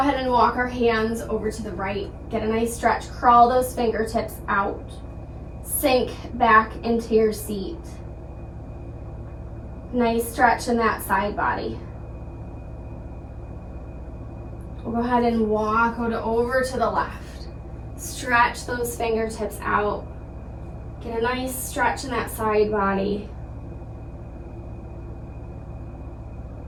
and walk our hands over to the right. Get a nice stretch, crawl those fingertips out. Sink back into your seat. Nice stretch in that side body. We'll go ahead and walk over to the left. Stretch those fingertips out. Get a nice stretch in that side body.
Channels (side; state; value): both; identical; correlation 1.00